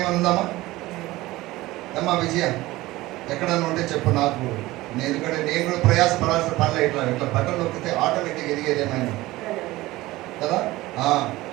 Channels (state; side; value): quieter; left; 18.5 dB